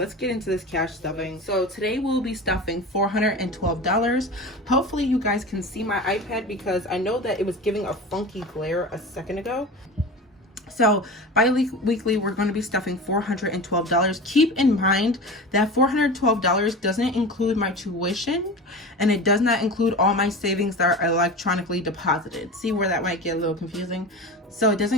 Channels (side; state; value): both; normal; correlation 0.31